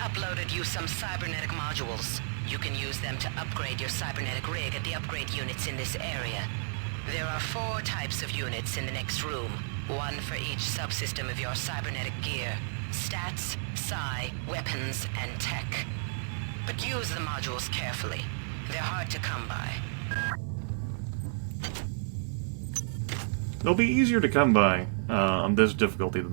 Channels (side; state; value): left; silent; digital silence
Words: you some cybernetic modules. You can use them to upgrade your cybernetic rig at the upgrade units in this area. There are 4 types of units in the next room. 1 for each subsystem of your cybernetic gear. Stats, psi, weapons, and tech. But use the modules carefully. They're hard to come by. They'll be easier to come by on this difficulty than